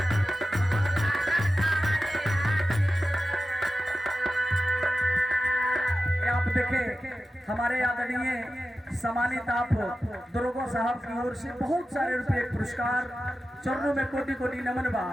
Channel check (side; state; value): both; normal; correlation 0.93